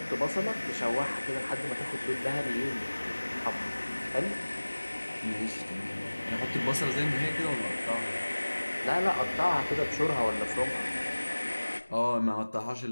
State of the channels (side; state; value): both; inverted; correlation -1.00